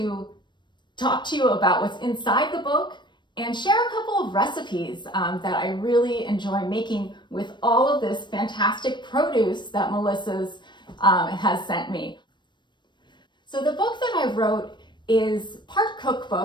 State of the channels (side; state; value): right; late; 0.22 ms